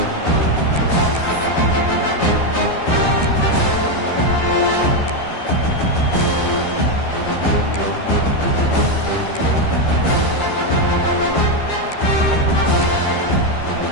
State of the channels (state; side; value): late; right; 12 ms